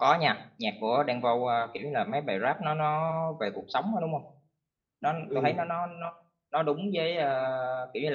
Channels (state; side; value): identical; both; correlation 1.00